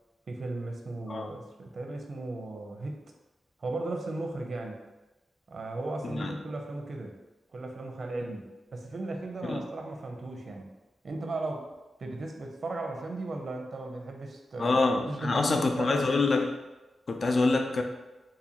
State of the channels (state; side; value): normal; both; correlation 0.90